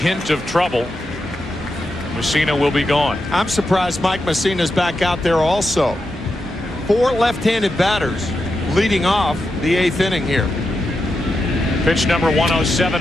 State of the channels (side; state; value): both; normal; correlation 0.87